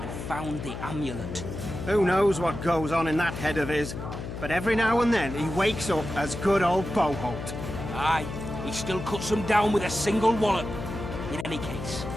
found the amulet. who knows what goes on in that head of his. But every now and then he wakes up as good old Boholt. Aye, he still cuts them down with a single wallop. In any case,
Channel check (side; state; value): left; noise; hum, 8 dB below the sound